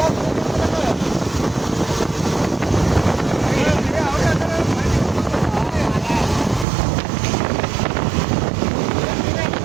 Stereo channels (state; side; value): drops out; left; at 6.7 s